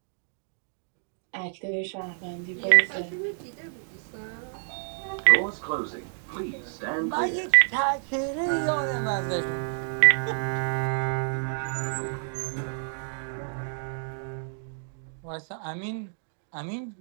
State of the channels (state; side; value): silent; left; digital silence